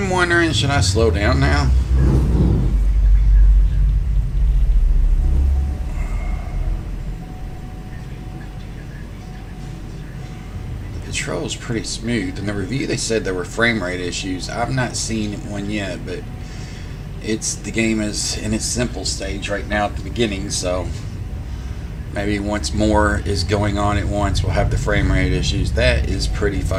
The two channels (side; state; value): both; identical; correlation 1.00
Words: wondering, should I slow down now? The control's pretty smooth. In the review, they said there were frame rate issues. I've not seen one yet, but the game is in its simple stage right now at the beginning, so maybe once more is going on at once, we'll have the frame rate issues. That is pretty